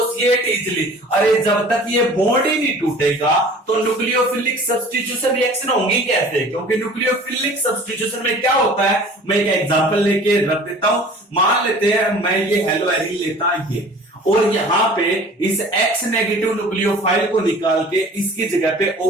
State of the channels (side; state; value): both; normal; correlation 0.46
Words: easily, अरे जब तक ये बॉन्ड ही नहीं टूटेगा तो न्यूक्लियोफिलिक सब्स्टिट्यूशन रिएक्शन होंगी कैसे, क्योंकि न्यूक्लियोफिलिक सब्स्टिट्यूशन में क्या होता है, मैं एक एग्जांपल लेके रख देता हूं। मान लेते हैं मैं ये हेलो एरिन लेता ये, और यहां पे इस X नेगेटिव न्यूक्लियोफाइल को निकाल के इसकी जगह पे